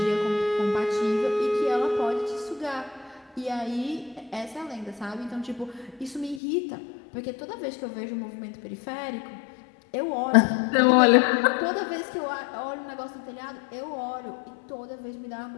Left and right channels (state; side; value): drops out; right; at 6.4 s